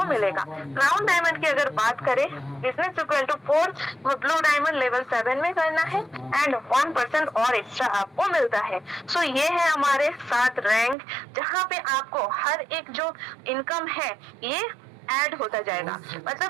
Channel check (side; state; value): left; drops out; at 11.0 s